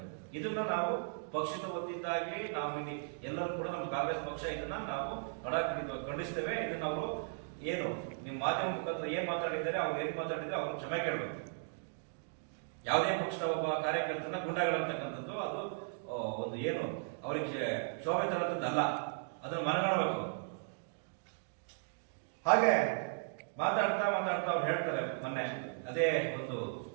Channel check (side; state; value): left; silent; digital silence